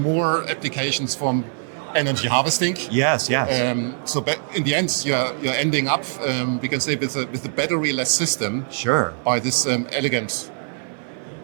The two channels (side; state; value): left; silent; 57 dB below the other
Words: applications from energy harvesting. Yes. So in the end, you're ending up, we can say, with a battery-less system. Sure. By this elegant